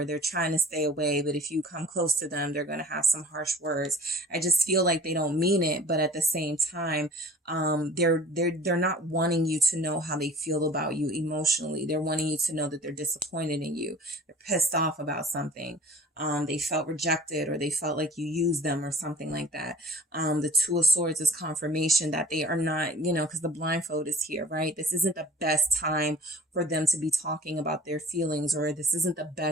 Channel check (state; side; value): normal; both; correlation 0.47